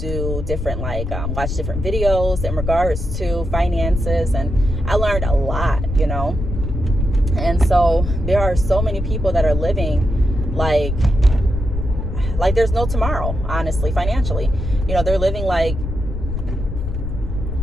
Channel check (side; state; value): left; noise; rumble, 4 dB below the sound